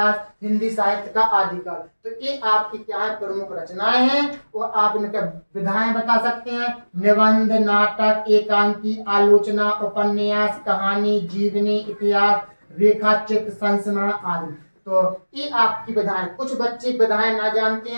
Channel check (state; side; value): inverted; both; correlation -1.00